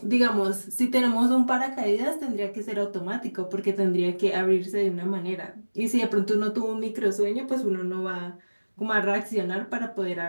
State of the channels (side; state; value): both; inverted; correlation -1.00